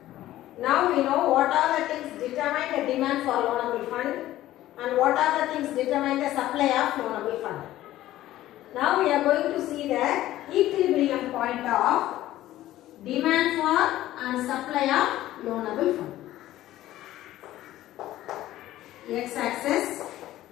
Now we know what are the things determine the demand for loanable fund and what are the things determine the supply of loanable fund. Now we are going to see the equilibrium point of demand for and supply of loanable fund. X-axis,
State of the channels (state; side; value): quieter; right; 14.6 dB